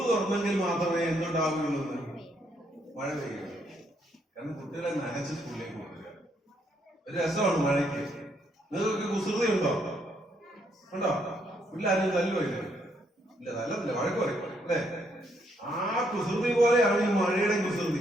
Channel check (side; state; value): both; normal; correlation 0.73